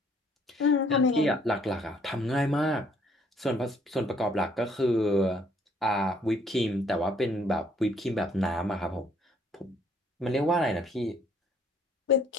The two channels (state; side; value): normal; both; correlation 0.63